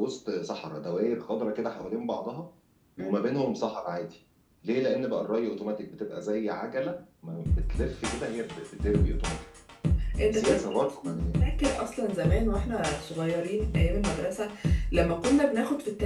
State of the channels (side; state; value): both; identical; correlation 1.00